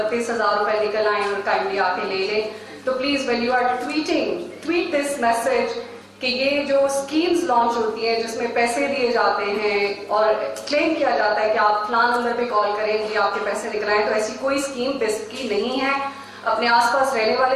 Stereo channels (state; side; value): identical; both; correlation 1.00